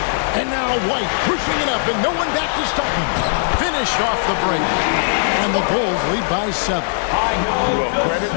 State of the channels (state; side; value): silent; right; digital silence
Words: And now White pushing it up, and no one back to stop him. Finish off the break. And the Bulls lead by 7. Well, credit